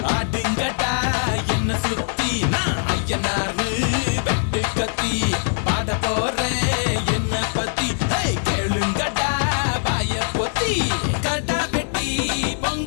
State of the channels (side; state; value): right; silent; 64 dB below the other